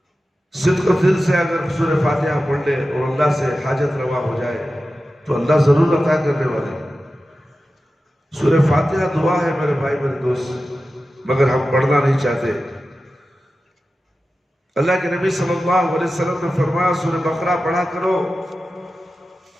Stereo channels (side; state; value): both; normal; correlation 0.93